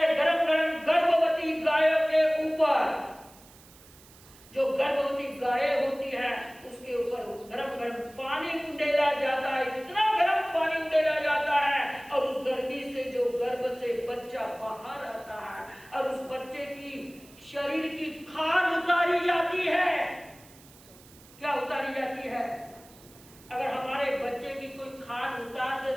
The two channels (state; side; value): noise; right; hiss, 24 dB below the sound